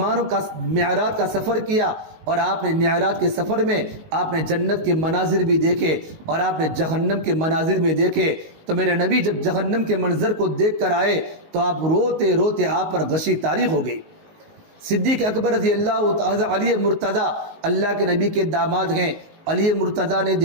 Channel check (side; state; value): left; late; 19 ms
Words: کا معراج کا سفر کیا اور آپ نے معراج کے سفر میں آپ نے جنت کے مناظر بھی دیکھے اور آپ نے جہنم کے مناظر بھی دیکھے، تو میرے نبی جب جہنم کے منظر کو دیکھ کر آئے تو آپ روتے روتے آپ پر غشی طاری ہو گئی۔ صدیق اکبر رضی اللہ تعالیٰ علی مرتضیٰ اللہ کے نبی کے داماد ہیں، علی مرتضیٰ نے